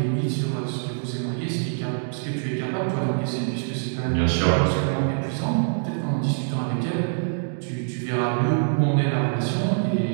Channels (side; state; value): left; silent; digital silence